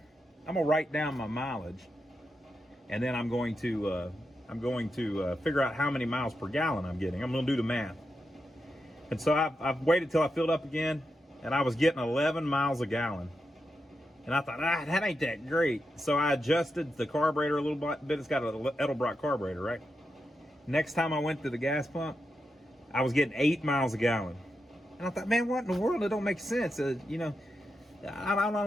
I'm going to write down my mileage, and then I'm going to figure out how many miles per gallon I'm getting. I'm going to do the math. And so I've waited till I filled up again, and I was getting 11 miles a gallon. And I thought, that ain't that great. So I adjusted the carburetor a little bit. It's got an Edelbrock carburetor, right? Next time I went to the gas pump, I was getting 8 miles a gallon. And I thought, man, what in the world? It don't make sense. I don't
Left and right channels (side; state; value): both; normal; correlation 0.87